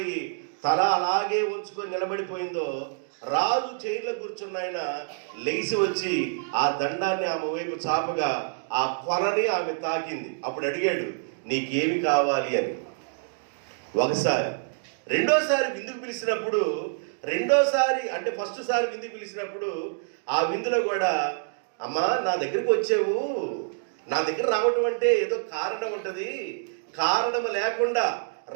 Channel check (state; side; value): silent; left; digital silence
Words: తల అలాగే ఉంచుకొని నిలబడిపోయిందో, రాజు చైర్లో కూర్చున్న ఆయన లెగిసి వచ్చి ఆ దండాన్ని ఆమె వైపు చాపగా ఆ కొరని ఆమె తాకింది. అప్పుడు అడిగాడు, నీకేమి కావాలి అని. ఒకసారి. రెండోసారి విందుకు పిలిచినప్పుడు, రెండోసారి అంటే ఫస్ట్ సారి విందుకు పిలిచినప్పుడు ఆ విందులో కూడా, అమ్మా నా దగ్గరికి వచ్చావు, నా దగ్గర రావటం అంటే ఏదో కారణం ఉంటుంది, కారణం లేకుండా